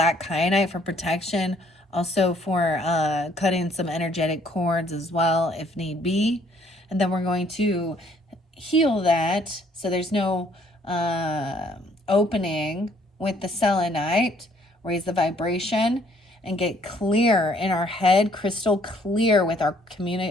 kyanite for protection. Also for cutting some energetic cords as well, if need be. And then we're going to heal that so there's no opening with the selenite. Raise the vibration and get clear in our head, crystal clear with our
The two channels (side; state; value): both; normal; correlation 0.63